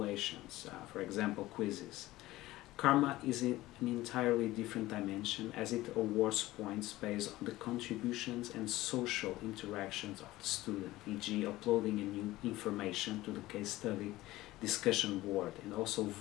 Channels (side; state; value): right; quieter; 17.3 dB